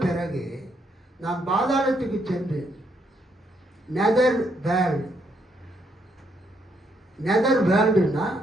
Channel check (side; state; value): both; normal; correlation 0.74